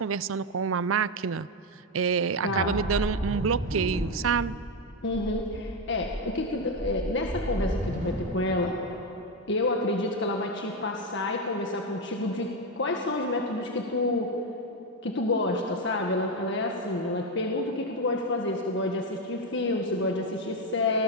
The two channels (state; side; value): normal; both; correlation 0.09